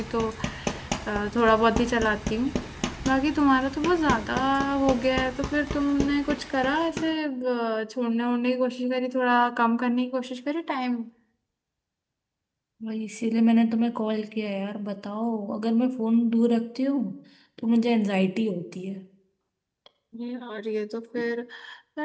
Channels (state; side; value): identical; both; correlation 1.00